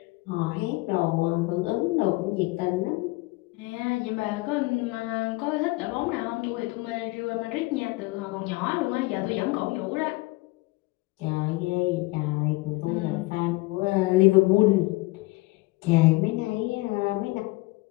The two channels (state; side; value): quieter; right; 22.3 dB